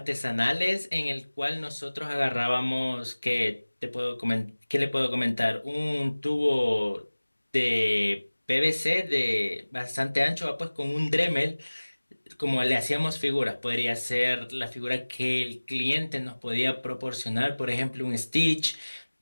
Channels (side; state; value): both; inverted; correlation -1.00